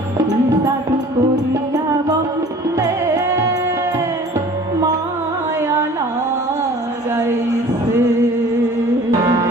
জাদু করিয়া বন্দে মায়া লাগাইছে।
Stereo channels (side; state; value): both; normal; correlation 0.47